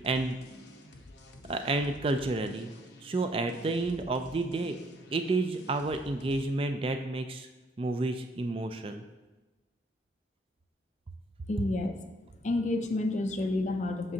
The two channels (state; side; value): normal; both; correlation 0.66